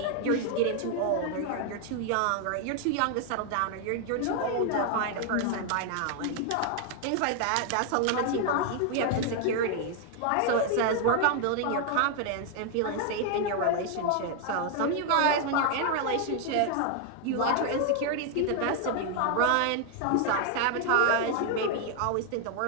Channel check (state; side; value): different; both; correlation 0.00